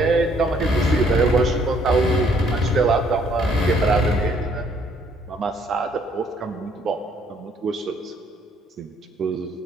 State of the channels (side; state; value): both; normal; correlation 0.65